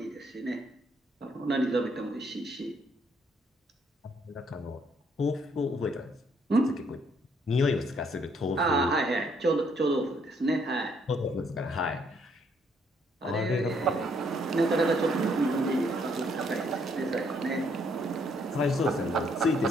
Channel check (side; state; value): both; normal; correlation 0.69